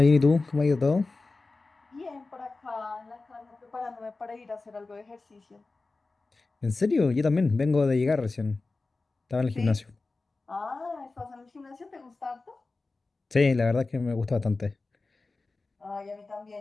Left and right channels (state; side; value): quieter; right; 3.6 dB